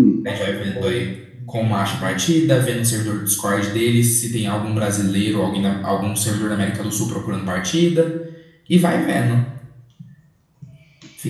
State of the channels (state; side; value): identical; both; correlation 1.00